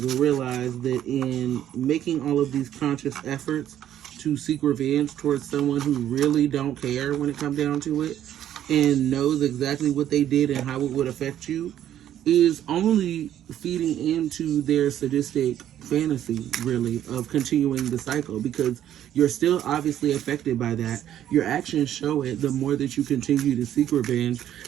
realize that in making all of these conscious efforts to seek revenge towards someone who really don't care when it comes down to it, and knows exactly what they did and how it would affect you, is only feeding into their sadistic fantasy, really, of continuing the cycle, because you're still obviously affected by that. Your actions show it the more that you continue to seek revenge,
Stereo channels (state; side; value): quieter; left; 11.2 dB